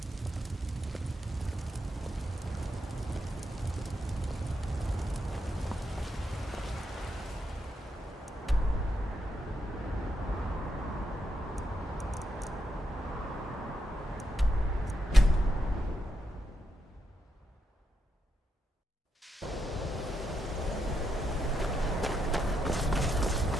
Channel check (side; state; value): both; normal; correlation 0.82